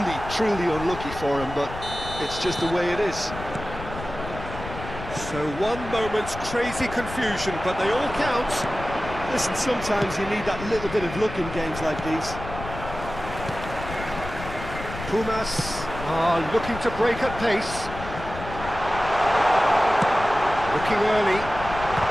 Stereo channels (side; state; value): left; noise; rumble, 10 dB below the sound